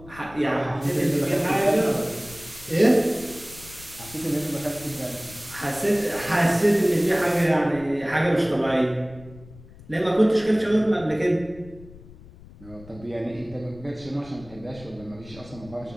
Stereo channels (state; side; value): noise; left; rumble, 20 dB below the sound